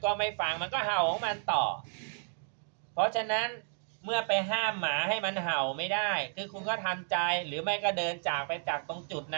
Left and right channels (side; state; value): left; silent; 56 dB below the other